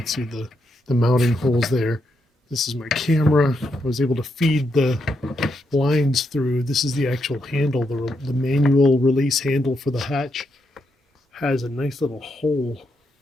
see the mounting holes there. This is my camera. I was able to feed the lines through. This is the actual handle. The manual release handle for the hatch has a nice little hole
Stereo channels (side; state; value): both; normal; correlation 0.81